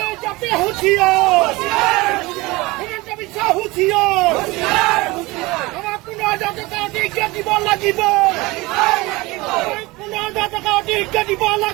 হুঁচিয়াৰ হিমন্ত বিশ্ব হুঁচিয়াৰ আমাক 15,000 টকা অধিক দিব লাগিব 15,000 টকা অধিক দিব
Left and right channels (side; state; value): left; quieter; 22.1 dB